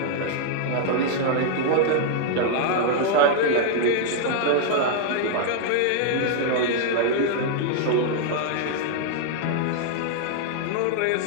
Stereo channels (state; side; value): different; both; correlation 0.00